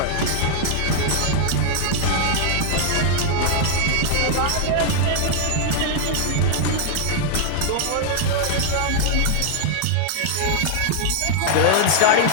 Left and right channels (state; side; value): different; both; correlation -0.01